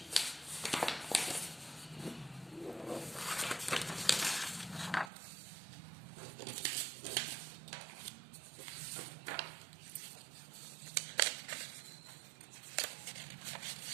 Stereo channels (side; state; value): left; drops out; at 5.1 s